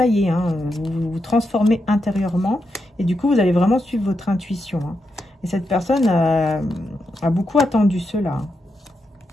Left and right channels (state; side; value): normal; both; correlation 0.85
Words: y est, hein, vous vous transformez intérieurement et du coup, vous allez vraiment suivre votre intuition. Hein. Et cette personne a beaucoup attendu cela.